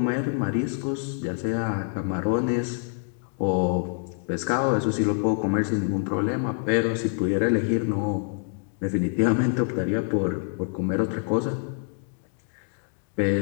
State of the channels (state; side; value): silent; right; 61 dB below the other